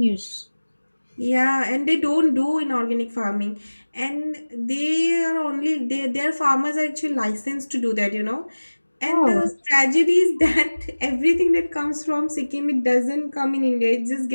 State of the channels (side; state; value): both; inverted; correlation -1.00